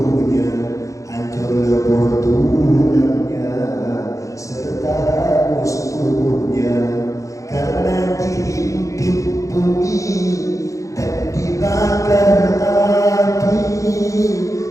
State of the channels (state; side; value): late; right; 0.15 ms